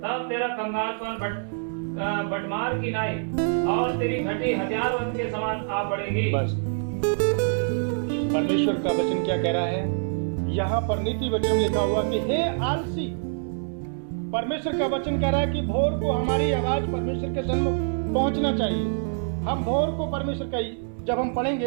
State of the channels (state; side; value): silent; left; digital silence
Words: तब तेरा कंगालपन बटमार की नाई और तेरी घटी हथियारबंद के समान आ पड़ेगी। बस परमेश्वर का वचन क्या कह रहा है यहाँ पर नीति वचन में लिखा हुआ कि हे आलसी, परमेश्वर का वचन कह रहा है कि भोर को हमारी आवाज परमेश्वर के सन्मुख पहुंचना चाहिए। हम भोर को परमेश्वर का, जब हम